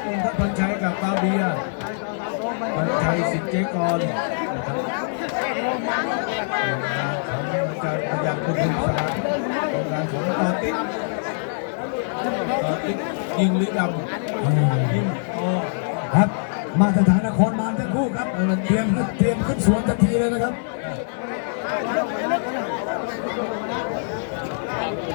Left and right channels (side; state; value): right; silent; digital silence